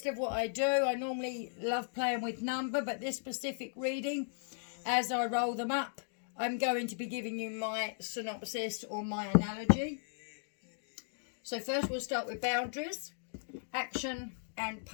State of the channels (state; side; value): silent; right; digital silence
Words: of what I do. I normally love playing with number, but this specific reading, as I roll them up, I'm going to be giving you my synopsis or my analogy. So first we'll start with boundaries, action and